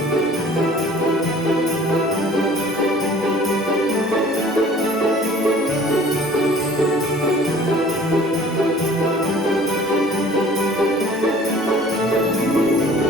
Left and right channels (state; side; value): normal; both; correlation 0.49